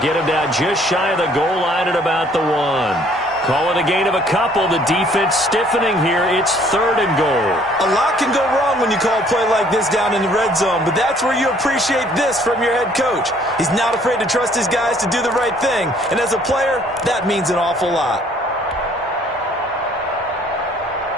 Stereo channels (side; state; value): both; normal; correlation 0.60